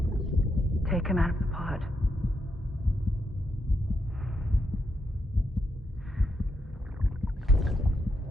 Take him out of the pod.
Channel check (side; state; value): both; normal; correlation 0.81